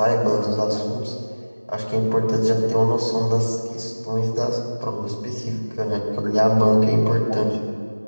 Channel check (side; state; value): both; inverted; correlation -1.00